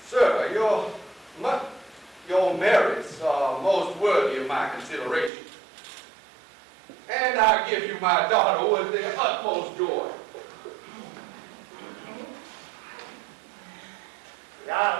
Sir, your merits are most worthy of my consideration. And I give you my daughter with the utmost joy. The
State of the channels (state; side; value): drops out; left; at 5.3 s